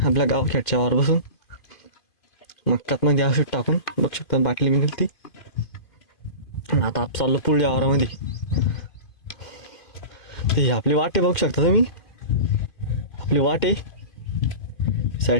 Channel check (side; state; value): right; late; 2.5 ms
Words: आपल्या गावखेडच्या वावर बसून मक्कात मध्ये असं टाकून बघ शकता बाटली मिळेल ती. आता आप चाललो पुढल्या वावरामध्ये. ते आपली वाटे बघू शकता तुम्ही, आपली वाटे